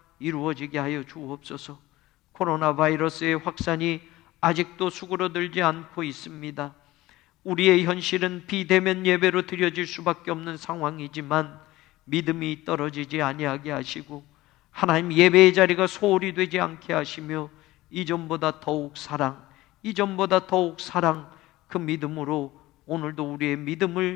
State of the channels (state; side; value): quieter; right; 17.8 dB